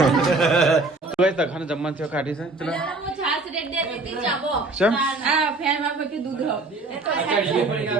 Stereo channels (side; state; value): left; quieter; 3.2 dB